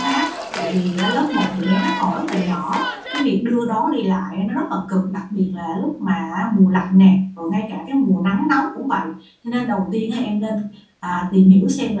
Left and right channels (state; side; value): identical; both; correlation 1.00